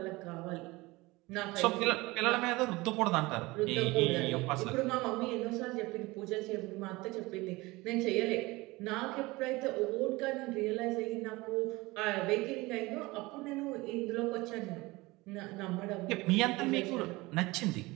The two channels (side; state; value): left; quieter; 21.8 dB